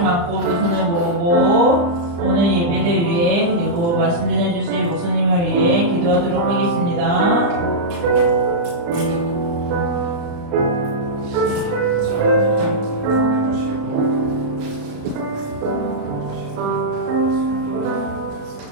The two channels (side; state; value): left; late; 35 ms